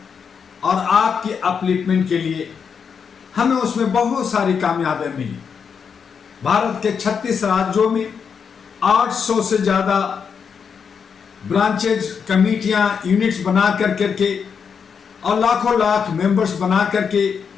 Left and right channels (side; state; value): right; quieter; 6.5 dB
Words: और आपकी अपलिफ्टमेंट के लिए हमें उसमें बहुत सारी कामयाबियां मिली। भारत के 36 राज्यों में 800 से ज़्यादा ब्रांचेज, कमेटियां, यूनिट्स बना करके और लाखों लाख मेंबर्स बना करके